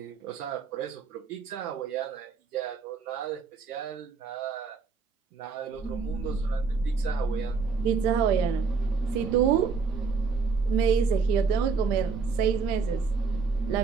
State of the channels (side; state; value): left; quieter; 5.1 dB